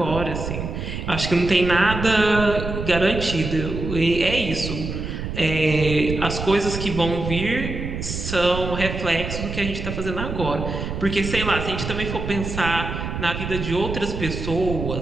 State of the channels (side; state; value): right; noise; rumble, 5 dB below the sound